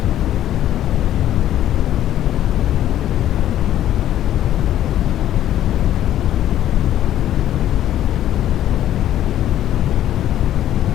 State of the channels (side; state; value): right; quieter; 12.1 dB